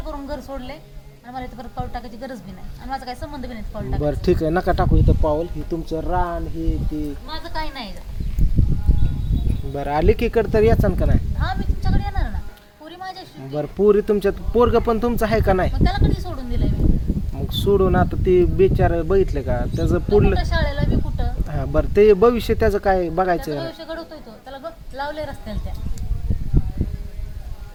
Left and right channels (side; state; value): both; identical; correlation 1.00